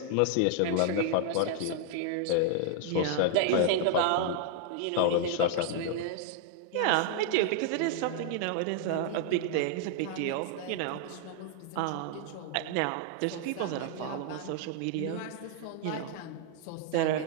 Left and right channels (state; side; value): different; both; correlation 0.00